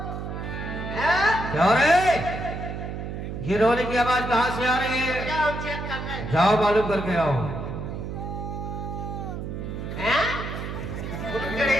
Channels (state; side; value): noise; right; hum, 6 dB below the sound